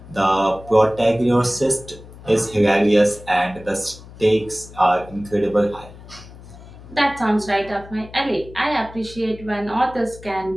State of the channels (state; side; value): noise; left; hum, 18 dB below the sound